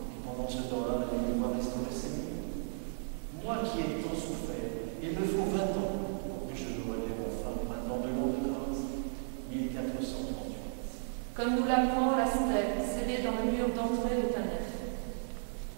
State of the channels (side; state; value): left; silent; 55 dB below the other